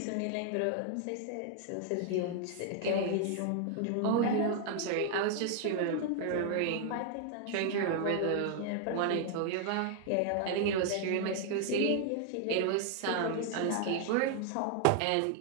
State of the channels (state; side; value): different; both; correlation 0.00